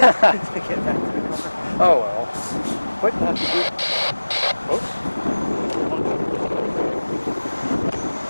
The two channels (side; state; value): both; inverted; correlation -1.00